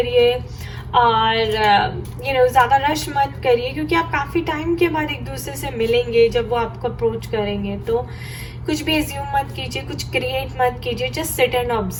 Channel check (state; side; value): identical; both; correlation 1.00